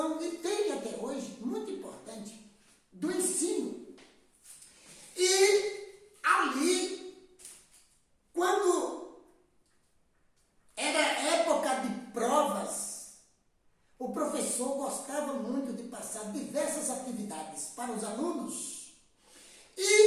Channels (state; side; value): identical; both; correlation 1.00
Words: e tem até hoje, muito importante, do ensino. E ali, quando era época de provas, o professor gostava muito de passar diversas atividades para os alunos.